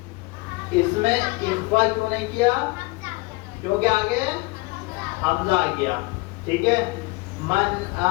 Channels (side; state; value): right; quieter; 24.8 dB